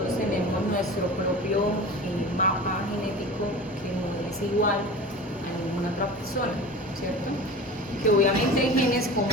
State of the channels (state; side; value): normal; both; correlation 0.35